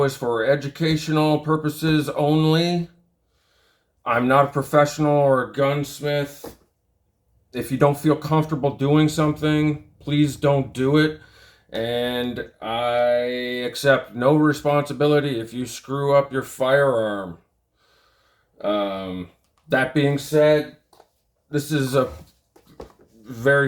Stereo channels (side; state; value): both; identical; correlation 1.00